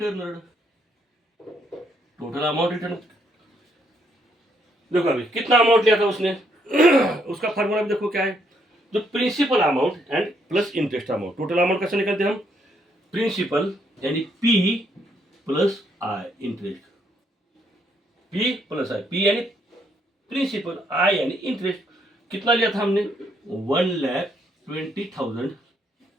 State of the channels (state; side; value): normal; both; correlation 0.72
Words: total amount return. देखो अभी कितना अमाउंट लिया था उसने उसका फार्मूला देखो क्या है? जो principal amount and plus interest amount. Total amount कैसे निकलते हैं हम? प्रिंसिपल यानी P plus I, interest, P plus I, P यानी प्रिंसिपल, आई यानी इंटरेस्ट। कितना लिया था हमने